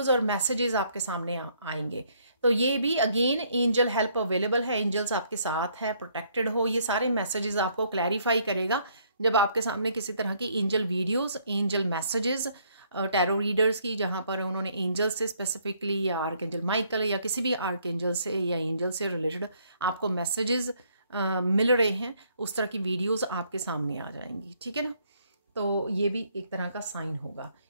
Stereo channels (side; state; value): both; inverted; correlation -0.67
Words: और मैसेजेस आपके सामने आएंगे। तो ये भी अगेन एंजल हेल्प अवेलेबल है, एंजल्स आपके साथ है, प्रोटेक्टेड हो। ये सारे मैसेजेस आपको क्लैरिफाई करेगा जब आपके सामने किसी तरह की angel videos, angel messages, tarot readers की, जहाँ पर उन्होंने एंजल से स्पेसिफिकली या आर्कएंजल माइकल या किसी भी आर्कएंजल से या एंजल से रिलेटेड आपको मैसेजेस मिल रहे हैं, उस तरह की वीडियोस आपके सामने आ जाएंगी, ठीक है ना। तो ये भी एक तरह का साइन होगा।